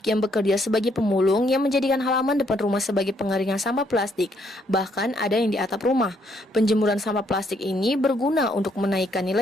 yang bekerja sebagai pemulung yang menjadikan halaman depan rumah sebagai pengeringan sampah plastik. Bahkan ada yang di atap rumah. Penjemuran sampah plastik ini berguna untuk menaikkan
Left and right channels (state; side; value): normal; both; correlation 0.71